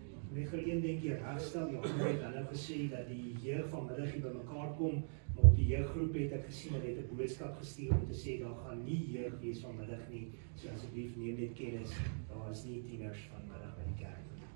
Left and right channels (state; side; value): silent; left; digital silence